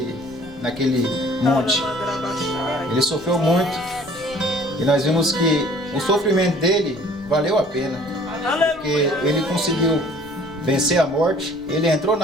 monte. Ele sofreu muito. E nós vimos que o sofrimento dele valeu a pena. Porque ele conseguiu vencer a morte. Ele entrou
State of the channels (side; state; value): left; noise; rumble, 23 dB below the sound